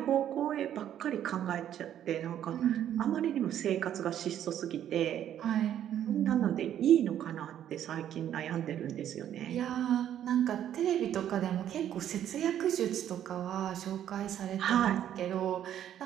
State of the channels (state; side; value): quieter; left; 10.6 dB